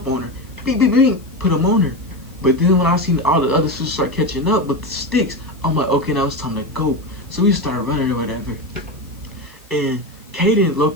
on her. Beep, beep, beep. Put them on her. But then when I seen all the other sisters start catching up with the sticks, I'm like, okay, now it's time to go. So we started running or whatever. And Caden,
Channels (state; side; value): noise; left; hiss, 27 dB below the sound